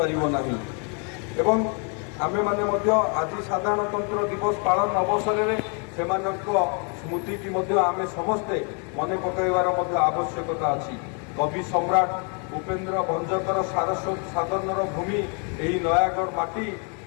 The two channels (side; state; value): right; quieter; 38.1 dB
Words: ନାହିଁ। ଏବଂ ଆମେମାନେ ମଧ୍ୟ ଆଜି ସାଧାରଣତନ୍ତ୍ର ଦିବସ ପାଳନ ଅବସରରେ ସେମାନଙ୍କ ସ୍ମୃତିକି ମଧ୍ୟ ଆମେ ସମସ୍ତେ ମନେ ପକାଇବାର ମଧ୍ୟ ଆବଶ୍ୟକତା ଅଛି। କବି ସମ୍ରାଟ ଉପେନ୍ଦ୍ର ଭଞ୍ଜଙ୍କର ସାଧନର ଭୂମି ଏହି ନୟାଗଡ଼ ମାଟି